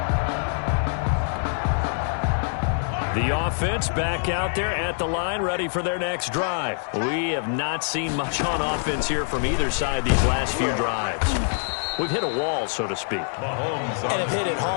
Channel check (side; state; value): right; silent; digital silence